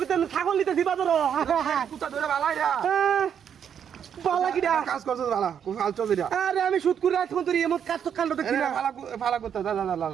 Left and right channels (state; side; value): quieter; left; 8.3 dB